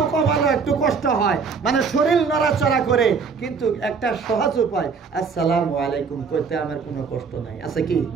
কপালে একটু কষ্ট হয়, মানে শরীর নড়াচড়া করে, কিন্তু একটা সহজ উপায় আসসালামু আলাইকুম করতে আমার কোনো কষ্ট নাই, আছে কি?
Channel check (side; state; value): left; quieter; 5.5 dB